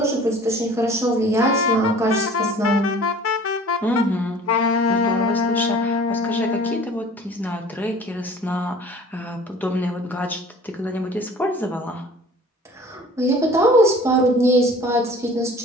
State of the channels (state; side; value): normal; both; correlation 0.47